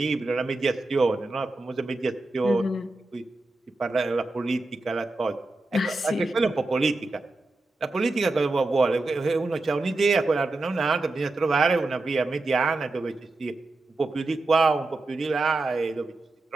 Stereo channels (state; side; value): quieter; left; 3.1 dB